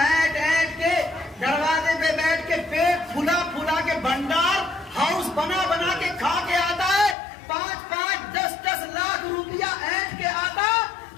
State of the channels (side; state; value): right; drops out; at 7.2 s